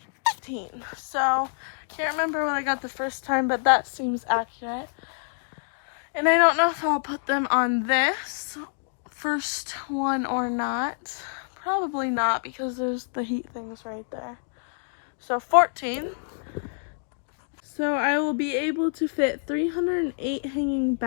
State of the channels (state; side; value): silent; right; digital silence